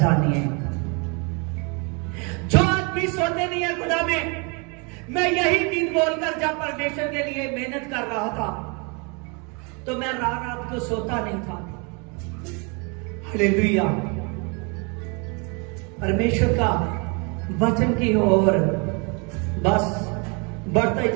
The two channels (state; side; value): quieter; left; 32.7 dB